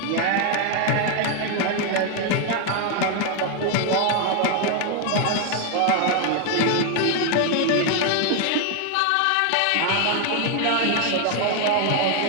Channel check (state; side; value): different; both; correlation 0.00